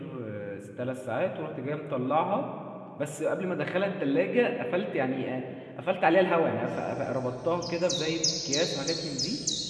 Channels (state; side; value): identical; both; correlation 1.00